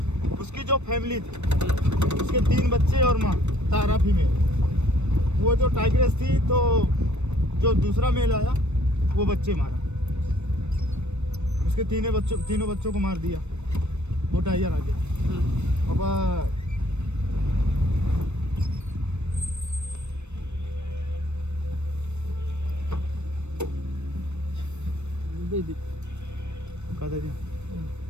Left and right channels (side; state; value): left; late; 0.82 ms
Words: उसकी जो फैमिली थी, उसके 3 बच्चे और माँ तारा फीमेल, वो जो टाइग्रेस थी तो जो दूसरा मेल आया वो बच्चे मारा। उसके तीनों बच्चों को मार दिया वो टाइगर आगे। अब